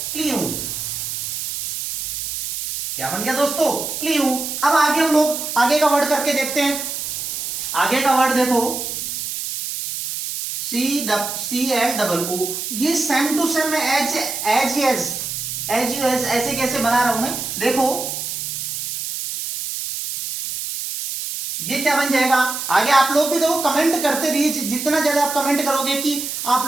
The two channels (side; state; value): right; noise; hiss, 5 dB below the sound